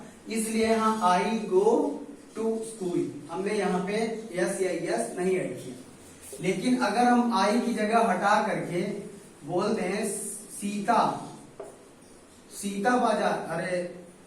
इसलिए यहां आई गो टू स्कूल हमने यहाँ पे यस या यस नहीं ऐड किया। लेकिन अगर हम आई की जगह हटा करके बोलते हैं सीता, सीता बाजार, अरे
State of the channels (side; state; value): both; identical; correlation 1.00